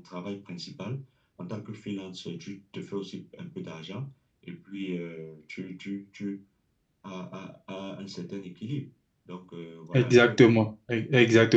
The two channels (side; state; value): both; identical; correlation 1.00